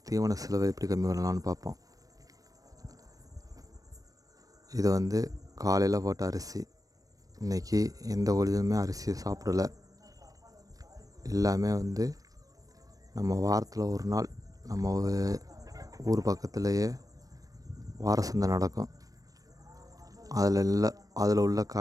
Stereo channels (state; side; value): late; left; 0.17 ms